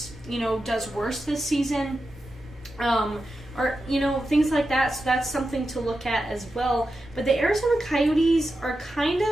does worse this season? Or, things like that. So that's something to look at as well. But the Arizona Coyotes are kind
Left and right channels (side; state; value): both; normal; correlation 0.90